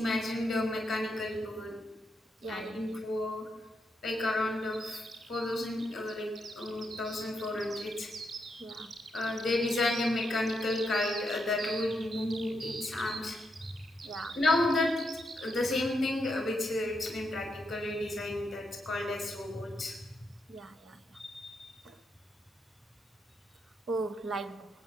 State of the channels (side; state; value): both; normal; correlation 0.81